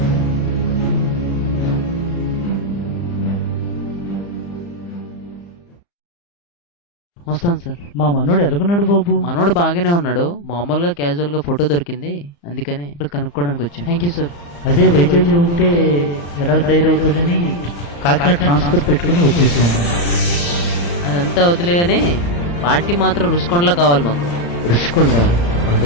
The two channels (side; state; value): right; late; 35 ms